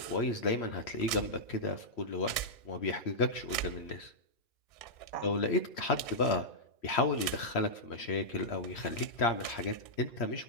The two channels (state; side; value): late; right; 1.8 ms